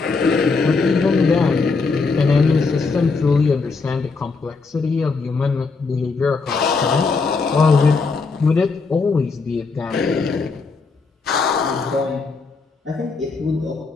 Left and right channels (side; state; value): right; quieter; 4.4 dB